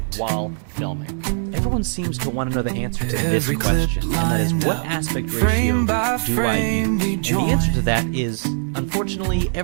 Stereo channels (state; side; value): silent; left; digital silence